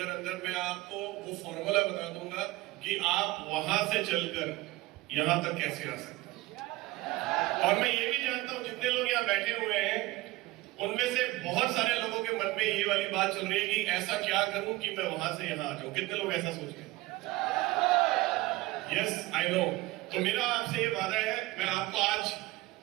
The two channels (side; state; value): left; quieter; 19.3 dB